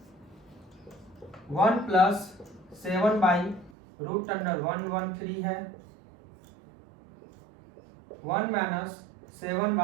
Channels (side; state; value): left; drops out; at 3.7 s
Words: 1 प्लस 7y√113 है। 1 माइनस